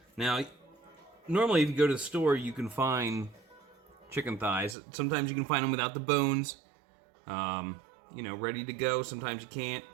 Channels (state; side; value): drops out; left; at 4.8 s